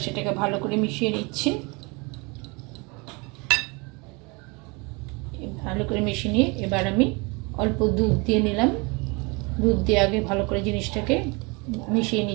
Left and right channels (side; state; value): left; quieter; 28.5 dB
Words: সেটাকে ভালো করে মিশিয়ে নিচ্ছি। ভালো করে মিশিয়ে নিয়ে এবার আমি অল্প দুধ দিয়ে নিলাম। দুধ দিয়ে আগে ভালো করে জিনিসটাকে মিশিয়ে